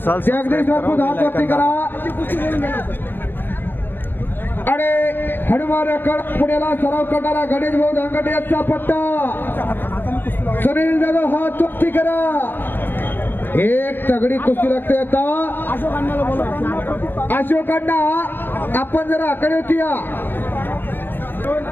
जगदीश राजपूत हात वरती करा. अरे हनुमान पुण्याला सराव करणारा गणेश भाऊ धांगटे यांचा पट्टा. सुनील जाधव हात वरती करा. एक तगडी कुस्ती लागते आता. अशोकांना आपण जरा आकडे होती या.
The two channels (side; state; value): right; late; 0.098 ms